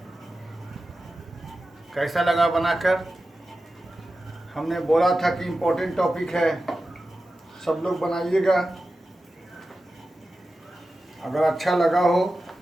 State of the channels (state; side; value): normal; both; correlation 0.93